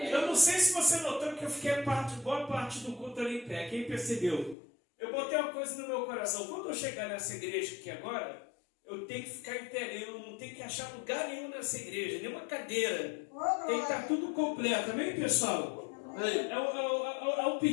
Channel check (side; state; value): right; drops out; at 4.5 s